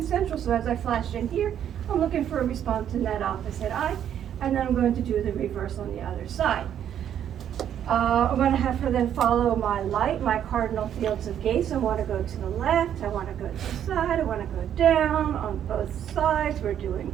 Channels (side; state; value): left; quieter; 9.8 dB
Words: So as I flash in here, I'm looking for a response in that opposite eye. And then I'm going to do the reverse on the other side. I'm going to have her then follow my light, my cardinal fields of gaze. I want to go to the left, I want to go to the side, I want to go down on both sides. We're doing